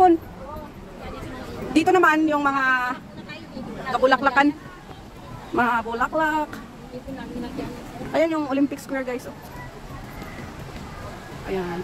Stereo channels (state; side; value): identical; both; correlation 1.00